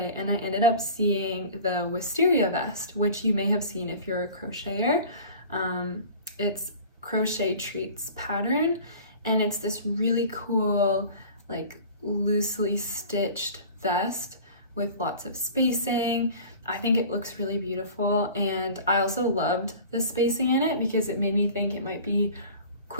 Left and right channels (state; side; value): inverted; both; correlation -0.41